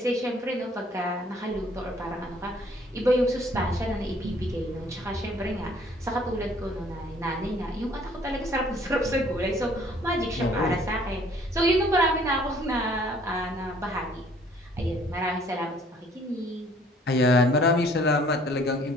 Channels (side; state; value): both; normal; correlation 0.58